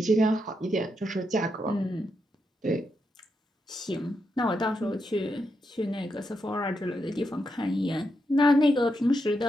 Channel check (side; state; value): both; normal; correlation 0.83